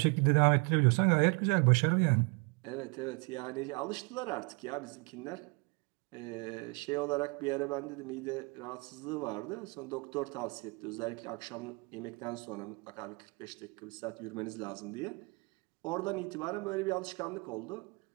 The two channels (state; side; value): quieter; left; 31.1 dB